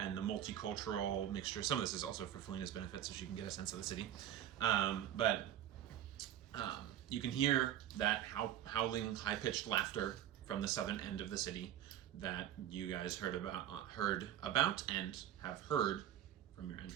the multicultural mixture. Some of this is also for Felina's benefit, so she can get a sense of the city. You can hear that howling, high-pitched laughter from the southern end of the city that you guys heard about and have heard from your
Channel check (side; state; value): left; quieter; 11.2 dB